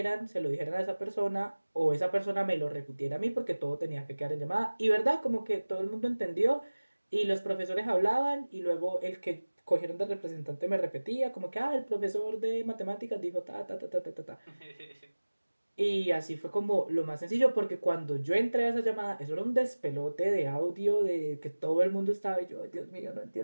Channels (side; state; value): both; inverted; correlation -1.00